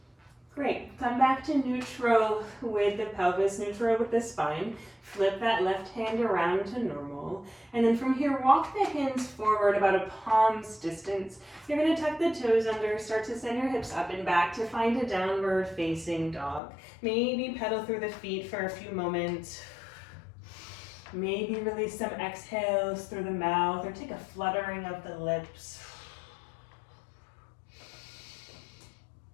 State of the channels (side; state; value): right; drops out; at 16.6 s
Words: Great. Come back to neutral with the pelvis, neutral with the spine. Flip that left hand around to normal. And then from here, walk the hands forward about a palm's distance. You're going to tuck the toes under, start to send your hips up and back to find a downward facing dog. Maybe pedal through the feet for a few moments. Maybe release some exhales through the mouth or take a fluttering of the lips.